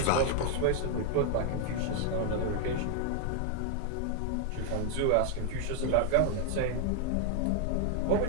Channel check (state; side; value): different; both; correlation 0.00